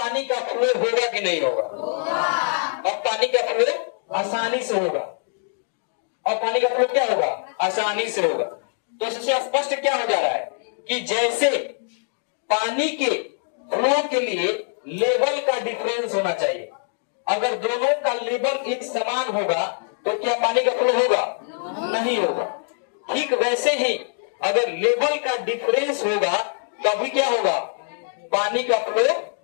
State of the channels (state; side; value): silent; right; digital silence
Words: का फ्लो होगा कि नहीं होगा? अब पानी का फ्लो आसानी से होगा। और पानी का फ्लो क्या होगा? आसानी से होगा। तो इससे स्पष्ट क्या हो जा रहा है कि जैसे पानी के फ्लो के लिए लेवल का डिफरेंस होना चाहिए, अगर दोनों का लेवल एक समान होगा तो क्या पानी का फ्लो होगा? नहीं होगा। ठीक वैसे ही अगर लेवल का डिफरेंस होगा तभी क्या होगा? पानी का फ्लो